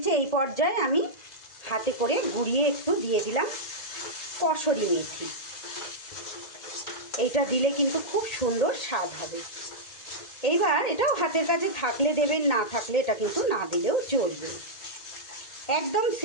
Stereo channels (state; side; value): late; right; 1.8 ms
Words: এই পর্যায়ে আমি হাতে করে গুঁড়িয়ে একটু দিয়ে দিলাম কসুরি মেথি। এইটা দিলে কিন্তু খুব সুন্দর স্বাদ হবে। এইবার এটাও হাতের কাছে থাকলে দেবেন, না থাকলে এটা কিন্তু না দিলেও চলবে। একদম